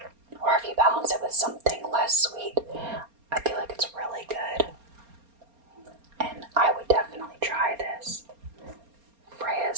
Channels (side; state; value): left; late; 4.3 ms